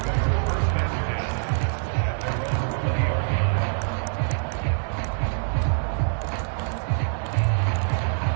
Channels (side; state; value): left; silent; digital silence